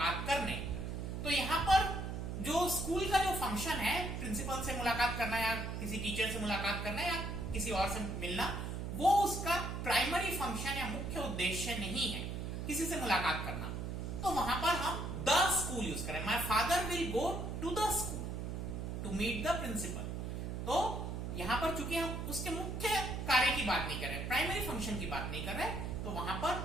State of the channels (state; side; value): noise; right; hum, 4 dB below the sound